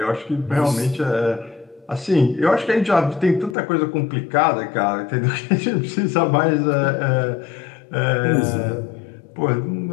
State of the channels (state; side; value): drops out; right; at 3.6 s